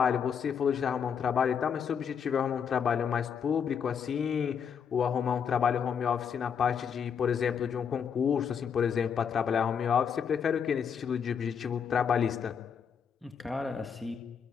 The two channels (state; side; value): quieter; right; 7.3 dB